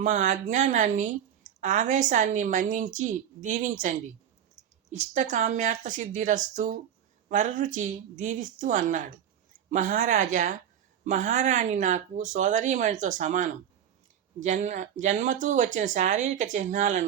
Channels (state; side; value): quieter; left; 9.5 dB